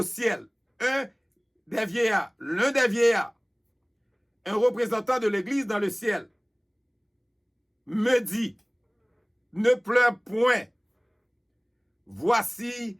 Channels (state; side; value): identical; both; correlation 1.00